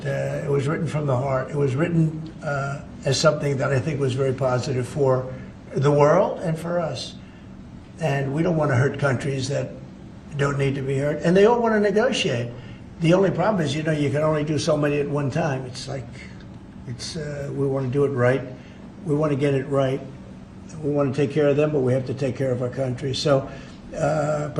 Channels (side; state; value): both; identical; correlation 1.00